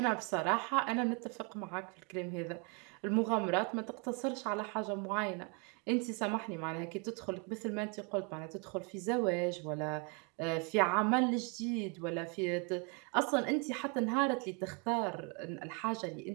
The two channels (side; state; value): left; quieter; 33.3 dB